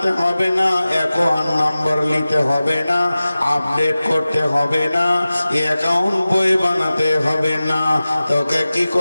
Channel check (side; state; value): both; inverted; correlation -0.96